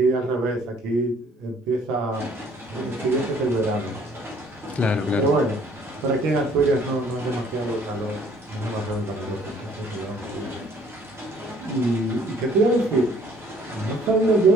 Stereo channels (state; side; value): normal; both; correlation 0.59